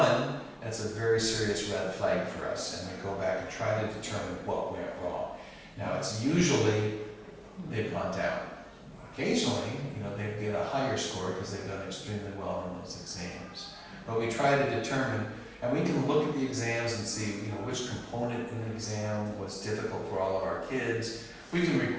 that's a very serious red flag for us, and we go back and try to determine what went wrong. Now, it's usually they've gone down. Occasionally, they get a higher score because they've done extremely well on those exams. But we try to determine, and we can look at the exams and see, which component in the exam was difficult for all of our kids. We can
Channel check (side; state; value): both; identical; correlation 1.00